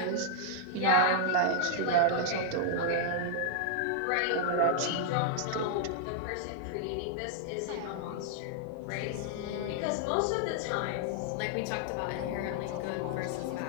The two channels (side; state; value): both; different; correlation -0.01